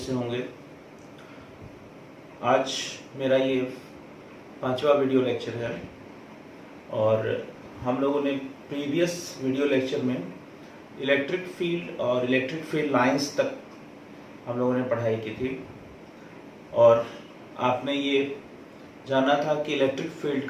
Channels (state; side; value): identical; both; correlation 1.00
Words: होंगे। आज मेरा ये 5वां वीडियो लेक्चर है और हम लोगों ने प्रीवियस वीडियो लेक्चर में इलेक्ट्रिक फील्ड और इलेक्ट्रिक फील्ड लाइंस तक हम लोगों ने पढ़ाई की थी और आपने ये जाना था कि इलेक्ट्रिक फील्ड